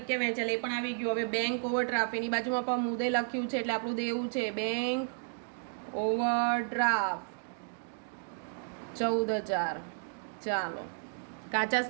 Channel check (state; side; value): silent; left; digital silence